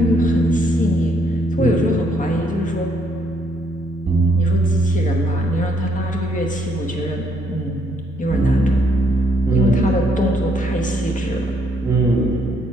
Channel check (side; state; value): both; normal; correlation 0.70